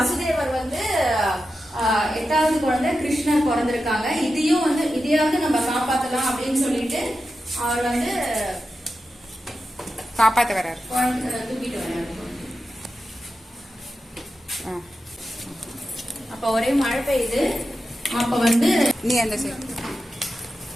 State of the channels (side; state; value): both; normal; correlation 0.91